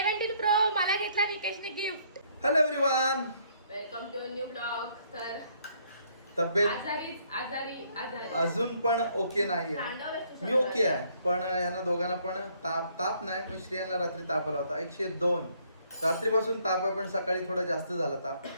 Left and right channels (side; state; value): both; inverted; correlation -0.66